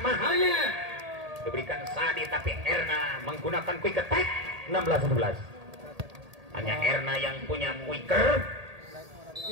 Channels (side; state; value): left; late; 1.8 ms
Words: mahalnya diberikan Sadi, tapi Erna menggunakan quick attack. 16-11. Hanya Erna yang punya quicker